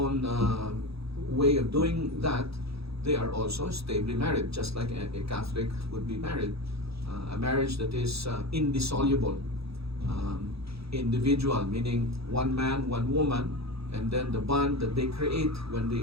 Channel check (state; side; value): late; left; 0.77 ms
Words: way of doing that, they are also stably married, just like a Catholic would be married. A marriage that is indissoluble, individual, meaning one man, one woman, and then the bond that they create when